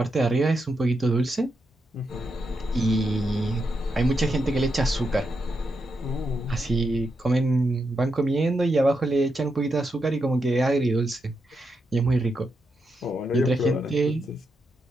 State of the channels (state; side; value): normal; both; correlation 0.84